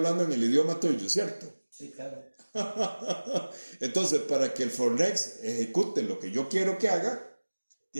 en el idioma tuyo, ¿cierto? Sí, claro. Entonces, para que el Fornex ejecute lo que yo quiero que haga,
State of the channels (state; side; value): inverted; both; correlation -1.00